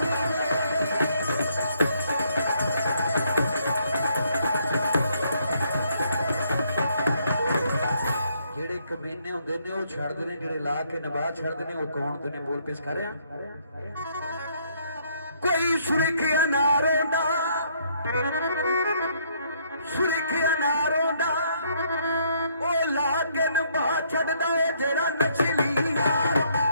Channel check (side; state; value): both; inverted; correlation -0.69